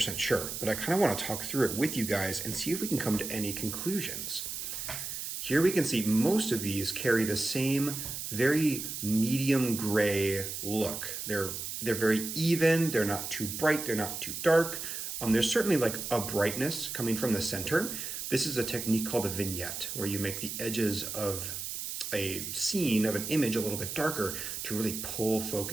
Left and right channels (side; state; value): right; noise; hiss, 5 dB below the sound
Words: sure, but I kind of want to talk through it with you guys and see if we can come to any conclusions. Here we can see most of these carry the same very medium gray look. They're They're very even, they're not too bright, they're not too dark. There's certainly like a brightness coming from the center. This is a technique called a vignette, where you make the edges of a scene, of an image, a little bit darker to really pull